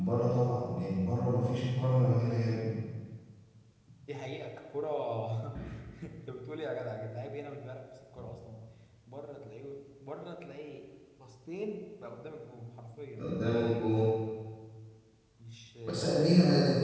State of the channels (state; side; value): identical; both; correlation 1.00